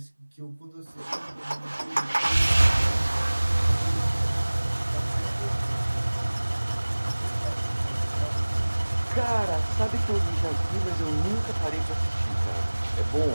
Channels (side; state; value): both; inverted; correlation -1.00